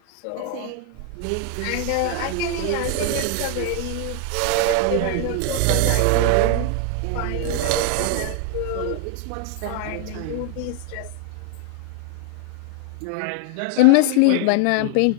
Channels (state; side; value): different; both; correlation 0.00